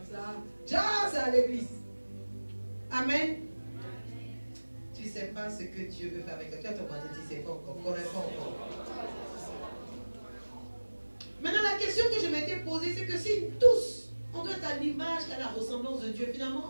ça. Déjà, c'est à l'église. Amen. Tu ne sais pas ce que Dieu veut faire avec toi. Toi, ton voisin, tu ne sais pas encore, ne connais pas encore. Maintenant, la question que c'est que si tous, on doit être à l'image et à la ressemblance de Dieu, finalement,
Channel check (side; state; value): both; inverted; correlation -1.00